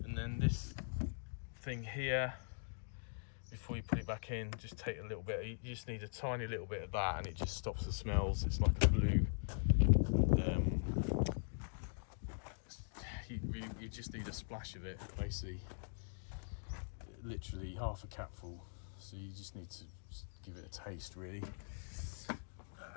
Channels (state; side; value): silent; right; digital silence